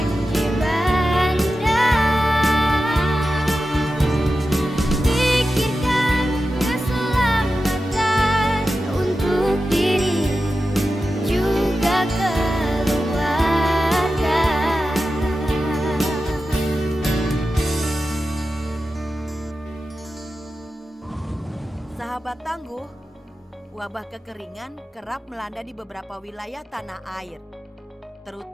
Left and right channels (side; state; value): both; normal; correlation 0.92